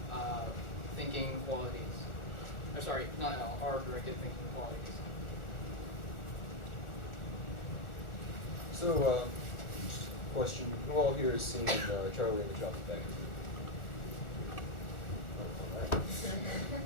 thinking qualities. Or sorry, not L, R-directed thinking qualities. So, just a question. Who all here has seen Charlie and the Chocolate Factory? Oh, all right.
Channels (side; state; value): right; late; 1.4 ms